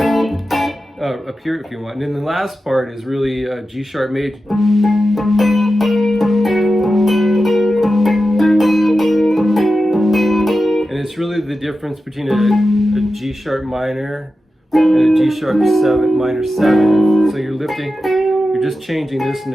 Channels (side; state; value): both; normal; correlation 0.92